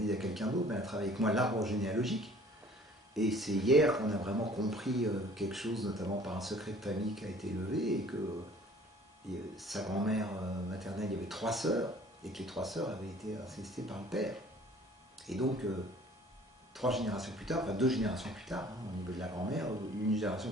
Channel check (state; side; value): normal; both; correlation 0.52